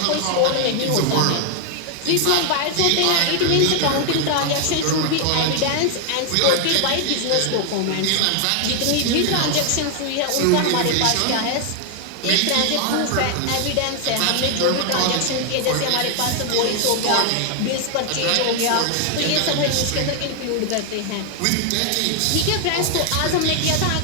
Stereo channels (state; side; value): different; both; correlation 0.00